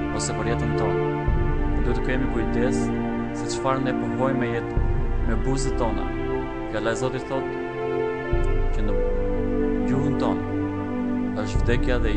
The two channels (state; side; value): identical; both; correlation 1.00